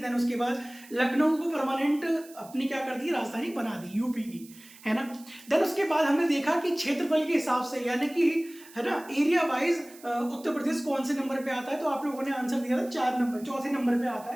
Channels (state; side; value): noise; right; hiss, 21 dB below the sound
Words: उसके बाद लखनऊ को परमानेंट अपनी क्या कर दी, राजधानी बना दी यूपी की, है ना। देन उसके बाद हमने देखा कि क्षेत्रफल के हिसाब से, यानी कि है ना, एरिया वाइज उत्तर प्रदेश कौन से नंबर पे आता है। तो आप लोगों ने आंसर दिया था 4 नंबर, चौथे नंबर पे आता